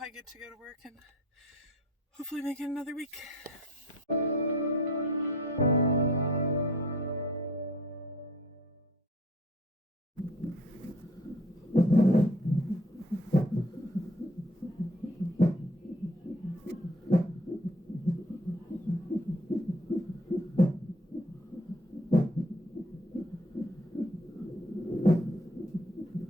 get to go to work and hopefully make it another week.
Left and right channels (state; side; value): normal; both; correlation 0.54